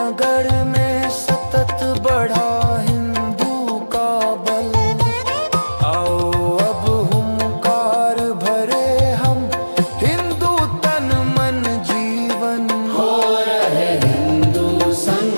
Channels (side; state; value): both; inverted; correlation -1.00